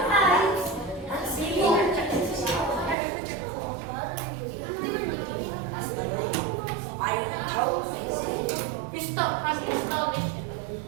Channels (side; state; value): left; drops out; at 3.0 s